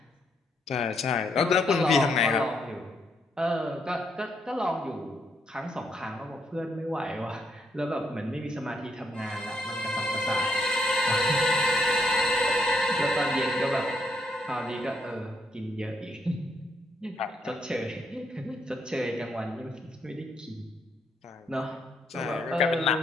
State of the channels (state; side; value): normal; both; correlation 0.75